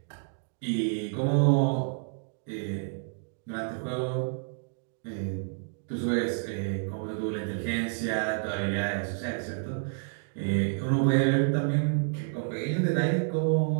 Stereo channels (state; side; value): silent; left; digital silence